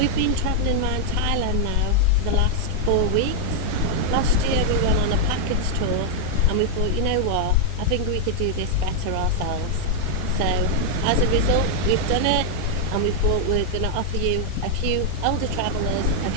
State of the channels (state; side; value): different; both; correlation -0.01